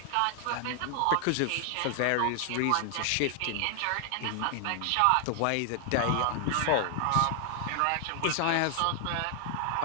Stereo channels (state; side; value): different; both; correlation 0.00